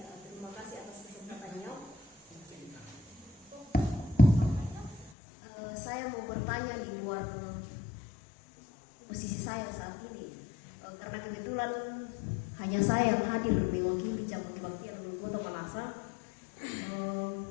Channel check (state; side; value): drops out; right; at 5.1 s